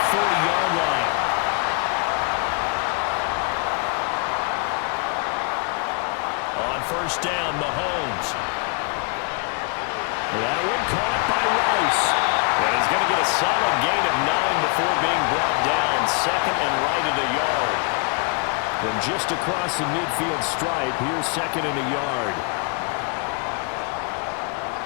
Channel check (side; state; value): right; quieter; 35.4 dB